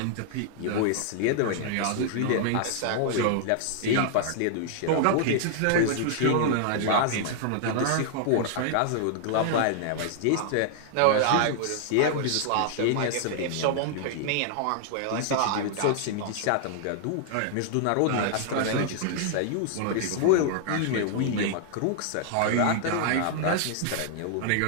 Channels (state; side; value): different; both; correlation -0.01